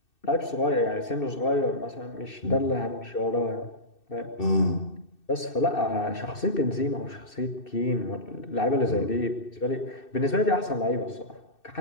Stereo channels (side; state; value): right; late; 2.6 ms